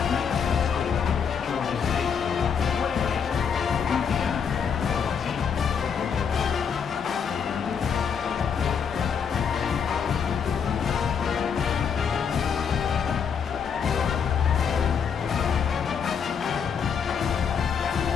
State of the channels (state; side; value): quieter; right; 6.9 dB